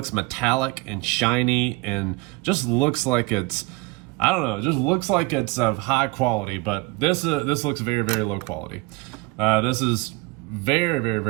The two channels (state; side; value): quieter; left; 24.4 dB